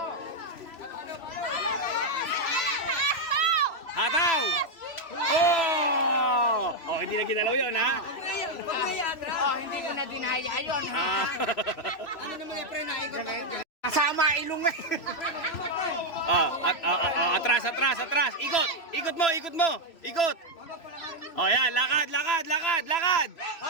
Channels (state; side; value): late; right; 3.0 ms